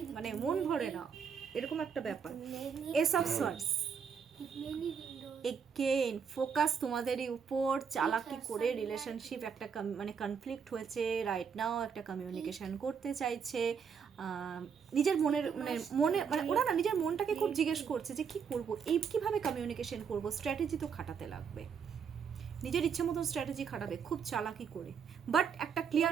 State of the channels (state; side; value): quieter; left; 6.7 dB